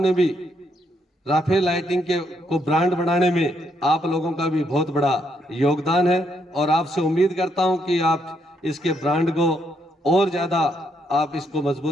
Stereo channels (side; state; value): both; normal; correlation 0.75